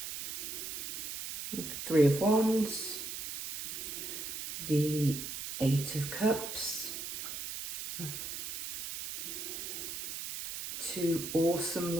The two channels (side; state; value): right; noise; hiss, 6 dB below the sound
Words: The 3 of Wands, the 8 of Cups, 2 awesome